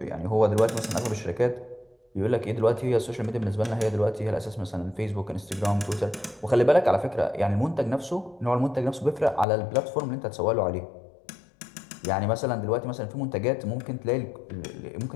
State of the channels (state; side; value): drops out; right; at 9.5 s